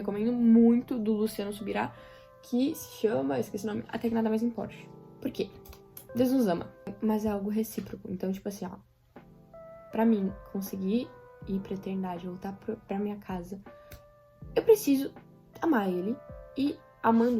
muito, do Luciano Subirá, que se chama, eu esqueci o nome, Até que Nada Mais Importe. Por quê? Deus nos ama, mas é algo recíproco. Então, tipo assim, ó, pra mim conseguir ir pra eternidade, voltar pra minha casa, eu preciso amar ele. E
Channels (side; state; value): both; identical; correlation 1.00